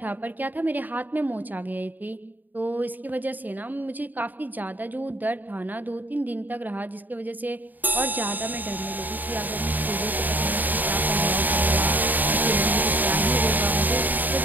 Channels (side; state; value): left; late; 0.086 ms